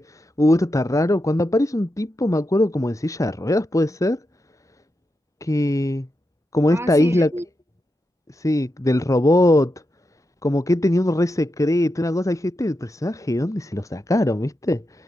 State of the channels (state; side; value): normal; both; correlation 0.87